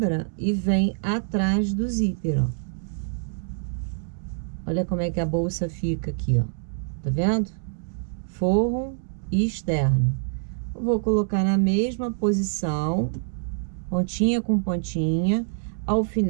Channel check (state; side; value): silent; left; digital silence